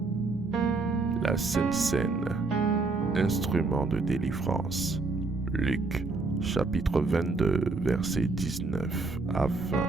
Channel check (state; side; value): quieter; left; 3.7 dB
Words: La Sainte Seine, instrument de délivrance. Luc, chapitre 22, versets 19 à 20.